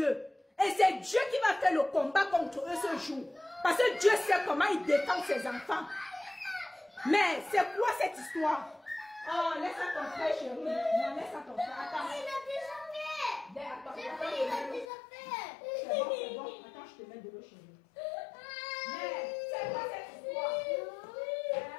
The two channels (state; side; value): drops out; right; at 14.9 s